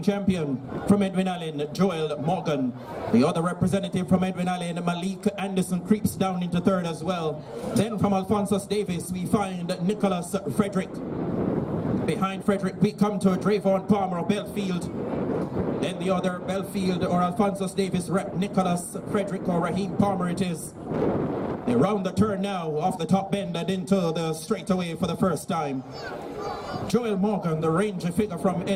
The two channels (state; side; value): identical; both; correlation 1.00